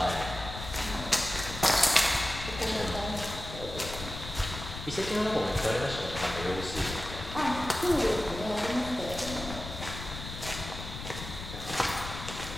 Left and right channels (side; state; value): left; noise; rumble, 9 dB below the sound